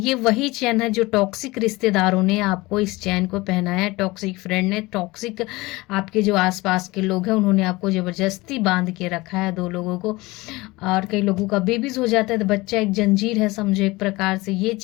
वही चैन है जो टॉक्सिक रिश्तेदारों ने आपको इस चैन को पहनाया है। टॉक्सिक फ्रेंड ने, टॉक्सिक आपके जो आसपास के लोग हैं, उन्होंने आपको ज़बरदस्ती बांध के रखा है, 2 लोगों को। और कई लोगों का बेबीज हो जाता है तो बच्चा एक जंजीर है, समझो एक प्रकार से। ये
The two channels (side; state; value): right; quieter; 21.5 dB